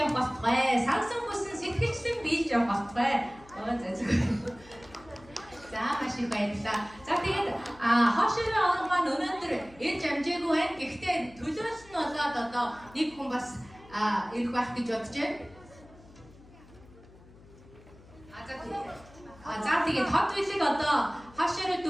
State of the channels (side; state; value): left; noise; hum, 23 dB below the sound